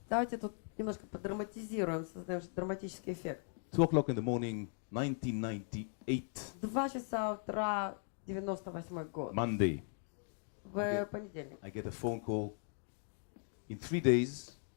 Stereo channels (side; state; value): right; silent; 52 dB below the other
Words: Давайте тут немножко подраматизируем, создаем драматический эффект. 2 o'clock in the morning, 1998, 2 часа утра, 98 год. Monday. В понедельник. I get a phone call. In 3 days,